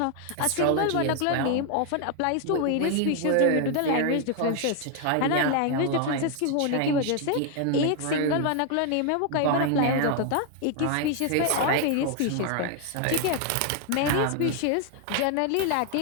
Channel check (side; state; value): both; different; correlation 0.01